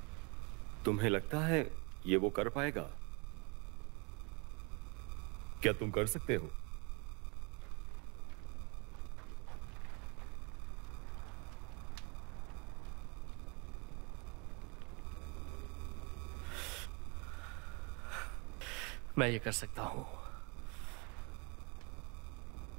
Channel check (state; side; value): quieter; left; 31.6 dB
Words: तुम्हें लगता है ये वो कर पाएगा? क्या तुम कर सकते हो? मैं ये कर सकता हूं।